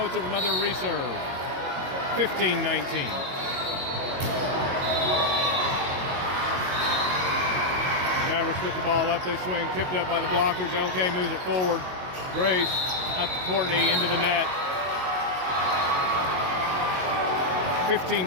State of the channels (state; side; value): late; left; 22 ms